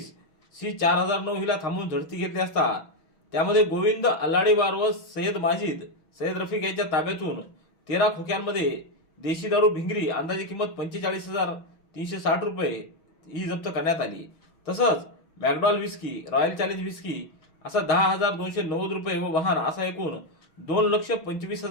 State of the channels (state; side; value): late; right; 6.2 ms